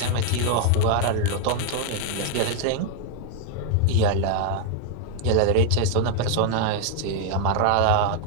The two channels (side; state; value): both; different; correlation 0.00